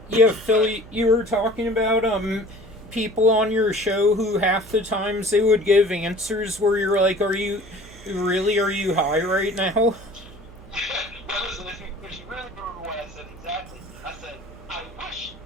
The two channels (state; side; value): noise; right; hum, 20 dB below the sound